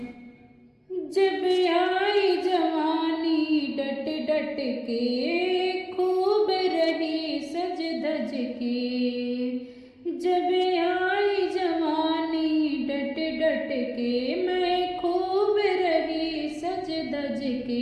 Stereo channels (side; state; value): both; identical; correlation 1.00